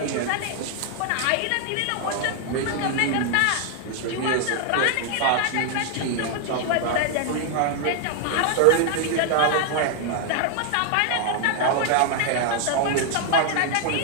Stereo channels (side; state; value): both; different; correlation 0.00